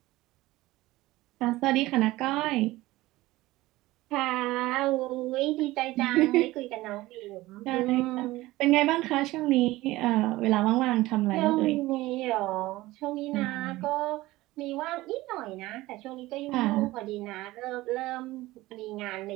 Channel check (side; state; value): left; quieter; 18.3 dB